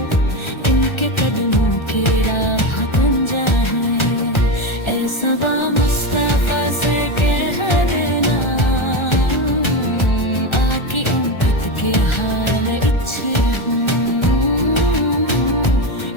इनके कदमों की राह बन जाए। ऐ सबा मुस्तफा से कह देना, आकी उम्मत के हाल इच्छे हूँ।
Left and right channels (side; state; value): right; late; 1.3 ms